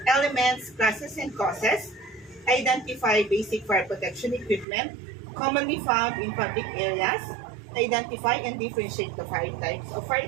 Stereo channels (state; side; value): drops out; left; at 4.7 s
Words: elements, classes, and causes, identify basic fire protection equipment commonly found in public areas, identify and differentiate the fire types of fire